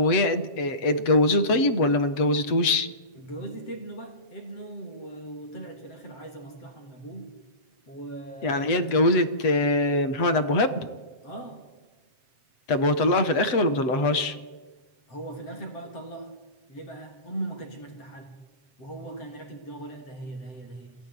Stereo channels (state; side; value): late; right; 7.6 ms